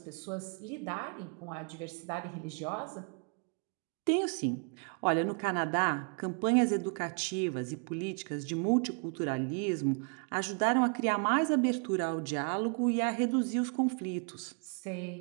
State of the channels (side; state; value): left; quieter; 39.1 dB